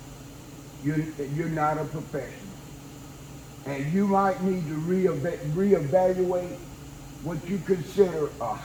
you're not a professional. And you might need to reevaluate what you consider a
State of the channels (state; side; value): identical; both; correlation 1.00